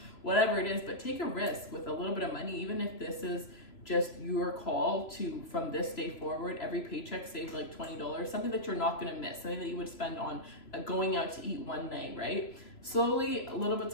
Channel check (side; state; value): right; late; 3.0 ms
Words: Whatever it is, but take a risk with a little bit of money, even if this is just your call to, from this day forward, every paycheck save like $20, something that you're not going to miss, something that you would spend on going out to eat one night, right? Slowly, little bits